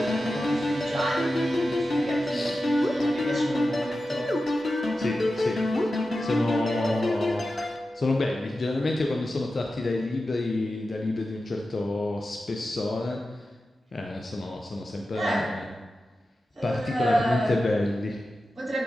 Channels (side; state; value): both; normal; correlation 0.92